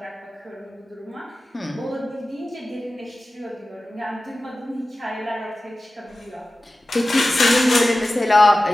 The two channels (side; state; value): both; normal; correlation 0.95